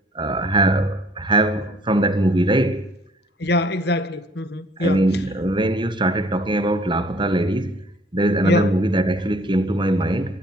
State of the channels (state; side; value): normal; both; correlation 0.58